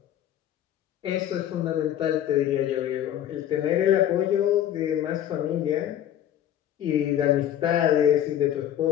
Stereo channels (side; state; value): right; quieter; 11.1 dB